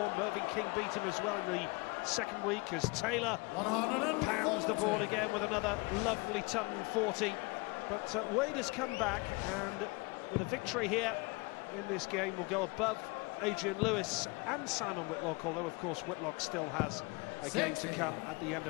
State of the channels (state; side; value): quieter; right; 26.9 dB